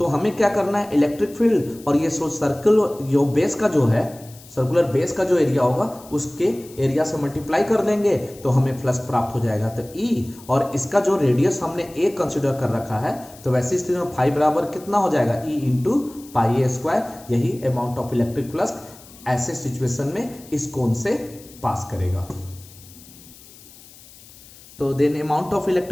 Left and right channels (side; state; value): left; noise; hiss, 21 dB below the sound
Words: हमें क्या करना है, इलेक्ट्रिक फील्ड और ये सर्कल जो बेस का जो है सर्कुलर बेस का जो एरिया होगा उसके एरिया से मल्टीप्लाई कर देंगे तो हमें फ्लक्स प्राप्त हो जाएगा। तो E और इसका जो रेडियस हमने A कंसिडर कर रखा है, तो वैसी स्थिति में फाई बराबर कितना हो जाएगा, E इंटू पाई ए स्क्वायर। यही अमाउंट ऑफ इलेक्ट्रिक फ्लक्स ऐसे सिचुएशन में इस कोन से पास करेगा। तो then amount of